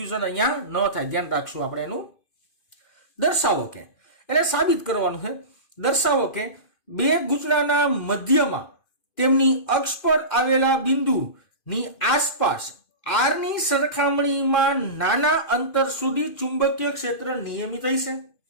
અહીંયા ન થાય, ધ્યાન રાખશું આપણે એનું. દર્શાવો કે, એટલે સાબિત કરવાનું છે. દર્શાવો કે બે ગૂંચળાના મધ્યમાં તેમની અક્ષ પર આવેલા બિંદુની આસપાસ r ની સરખામણીમાં નાના અંતર સુધી ચુંબકીય ક્ષેત્ર નિયમિત હશે.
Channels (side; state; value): right; late; 2.5 ms